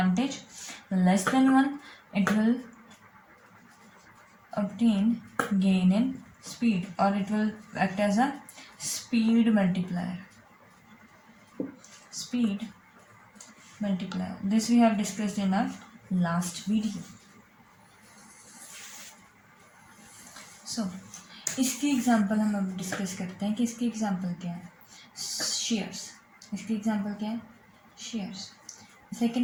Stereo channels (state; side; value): identical; both; correlation 1.00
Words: less than 1, it will obtain gain in speed or it will act as a speed multiplier. This we have discussed in our last video. So इसकी example हम अब discuss करते हैं कि इसकी example क्या है, shares. इसकी एग्जांपल क्या है, शेयर्स।